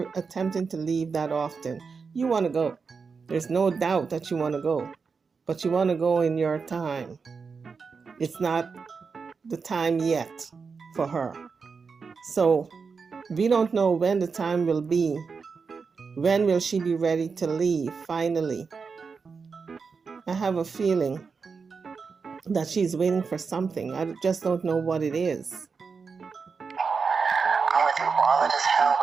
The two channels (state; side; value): quieter; left; 5.2 dB